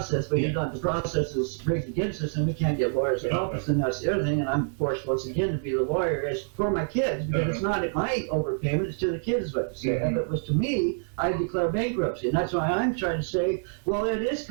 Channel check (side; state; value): left; silent; digital silence